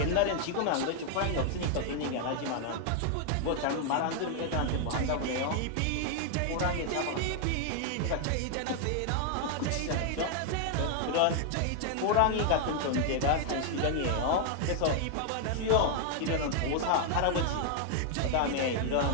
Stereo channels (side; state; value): both; different; correlation 0.00